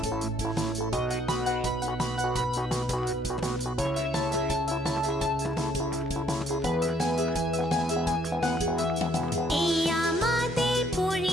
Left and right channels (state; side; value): normal; both; correlation 0.67